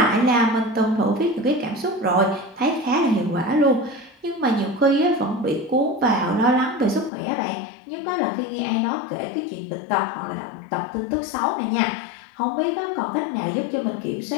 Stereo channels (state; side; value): drops out; right; at 7.1 s